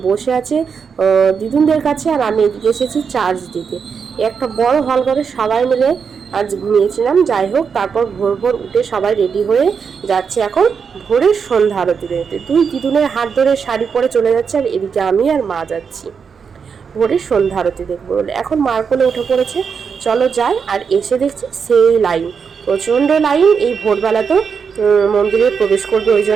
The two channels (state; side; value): quieter; left; 6.2 dB